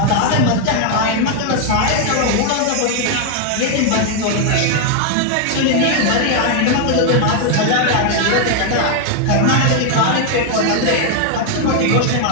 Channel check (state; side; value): different; both; correlation 0.00